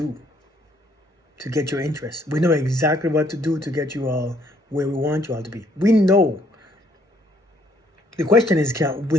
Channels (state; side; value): normal; both; correlation 0.66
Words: to get your interest. We know exactly what to do to get you all where we want you all to be. We know. The question is,